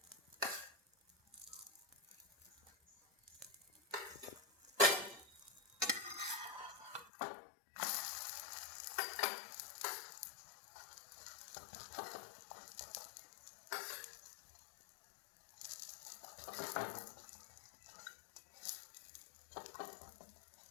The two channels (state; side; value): drops out; right; at 7.1 s